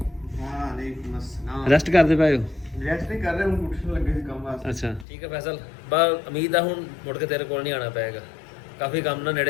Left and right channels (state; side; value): drops out; right; at 5.1 s